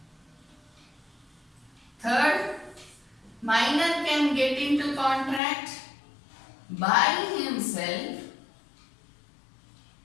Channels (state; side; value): drops out; right; at 5.4 s